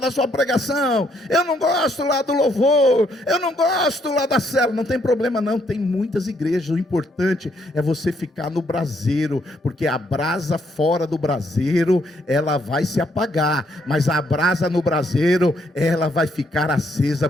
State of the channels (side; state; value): both; normal; correlation 0.72